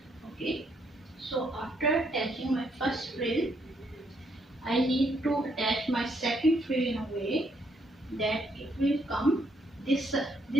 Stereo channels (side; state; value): both; normal; correlation 0.73